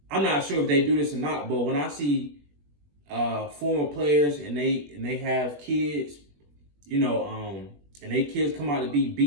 I'm not sure if they do this or not, but when I see former players and they have kids, and they kids come out to be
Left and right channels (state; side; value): late; left; 21 ms